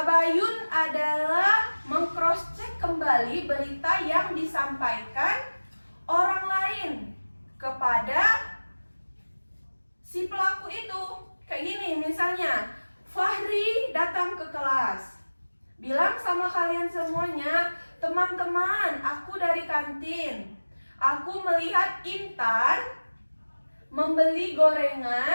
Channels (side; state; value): both; inverted; correlation -1.00